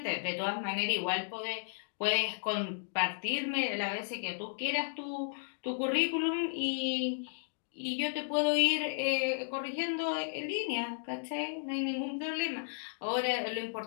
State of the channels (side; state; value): right; silent; digital silence